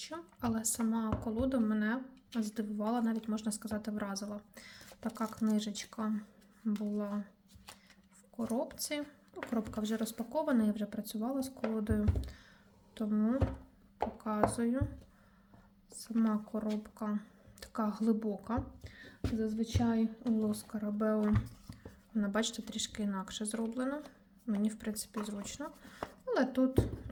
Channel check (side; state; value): both; identical; correlation 1.00